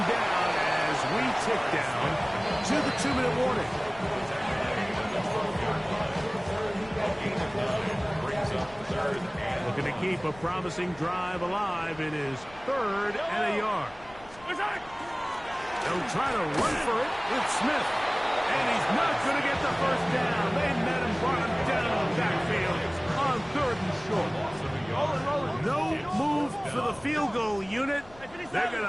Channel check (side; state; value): left; noise; rumble, 22 dB below the sound